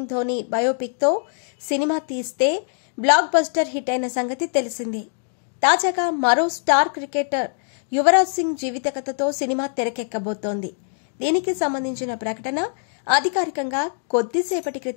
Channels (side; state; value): right; silent; digital silence